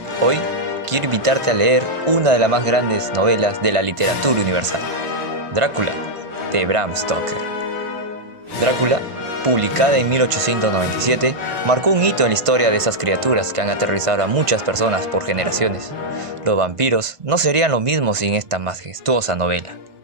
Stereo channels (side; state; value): left; late; 1.5 ms